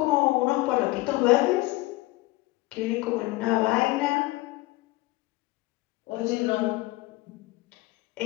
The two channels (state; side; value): quieter; right; 20.2 dB